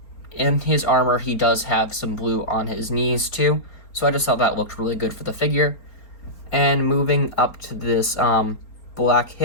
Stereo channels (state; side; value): late; right; 4.3 ms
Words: in his armor he does have some blue on his knees too. So I just thought that looked really good for the figure. And moving up to this black